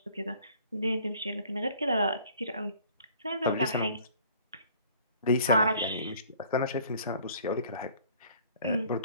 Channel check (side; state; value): both; inverted; correlation -0.55